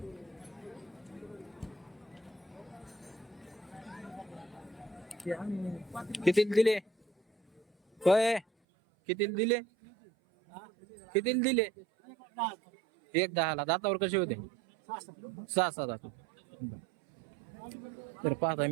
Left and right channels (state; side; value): drops out; left; at 8.5 s